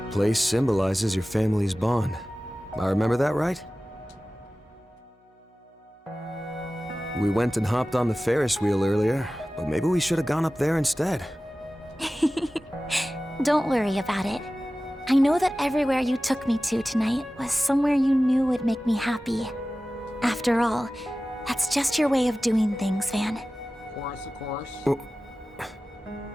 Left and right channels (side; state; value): both; normal; correlation 0.96